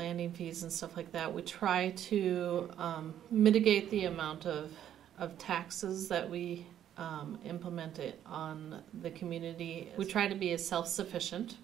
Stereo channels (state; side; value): quieter; left; 10.6 dB